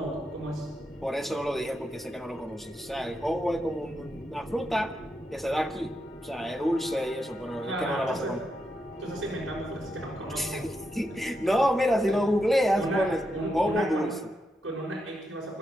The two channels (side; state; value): both; normal; correlation 0.84